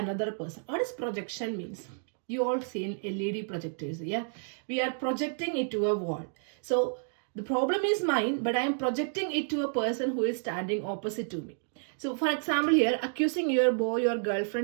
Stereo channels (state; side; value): silent; left; digital silence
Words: person. What does projection means? You all seen LED projectors, yeah? We are projecting it to a wall. So the problem is mine, but I am projecting it to a person who is standing opposite to me. So for example here, accusing your boy or